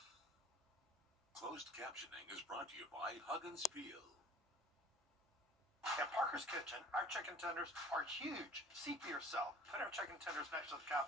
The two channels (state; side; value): normal; both; correlation 0.47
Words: Closed captioning is brought to you by Huggins Peel. At Parker's Kitchen, our chicken tenders are huge. See for yourself. Put our chicken tenders next to the